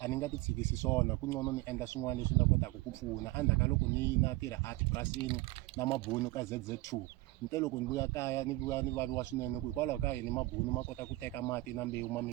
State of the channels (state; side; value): quieter; left; 19.9 dB